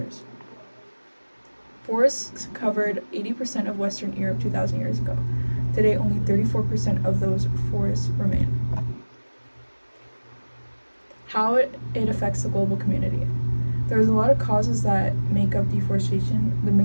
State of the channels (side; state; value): both; inverted; correlation -1.00